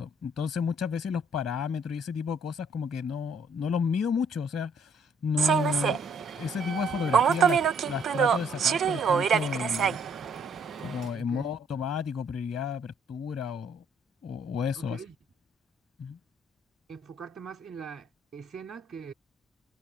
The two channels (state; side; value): normal; both; correlation 0.65